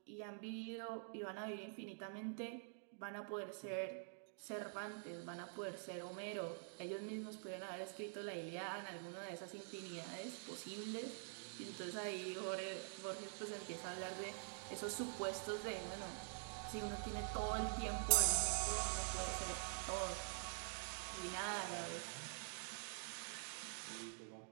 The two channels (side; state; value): left; silent; digital silence